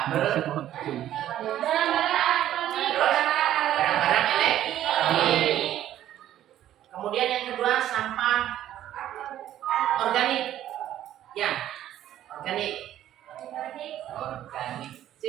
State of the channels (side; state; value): left; quieter; 12.2 dB